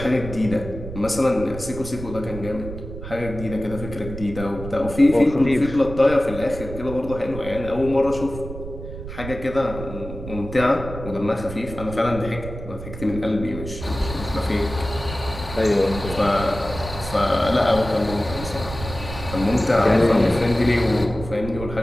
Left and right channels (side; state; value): right; noise; rumble, 10 dB below the sound